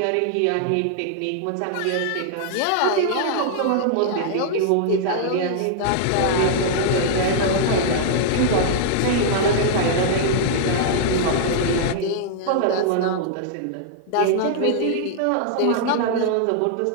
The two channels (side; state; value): both; different; correlation -0.01